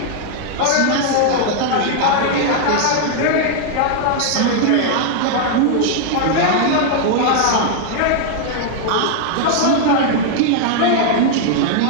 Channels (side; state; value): both; different; correlation 0.00